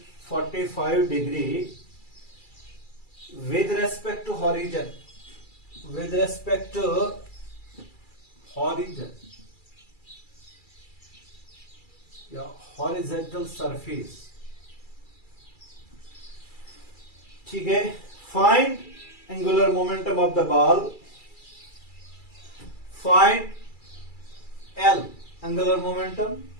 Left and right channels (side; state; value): right; late; 2.3 ms